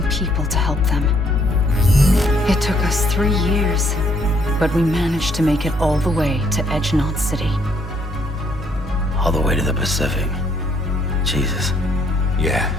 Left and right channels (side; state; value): both; normal; correlation 0.68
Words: people to help them. It took us 3 years, but we managed to make it all the way to Edgenod City. All the way to the Pacific. Jesus. Yeah,